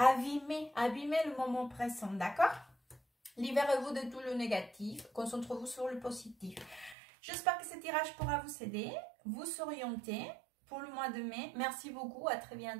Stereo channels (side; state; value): left; drops out; at 7.0 s